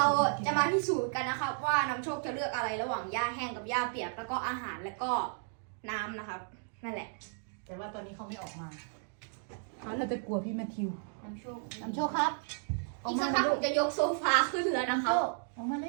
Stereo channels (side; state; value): left; silent; 55 dB below the other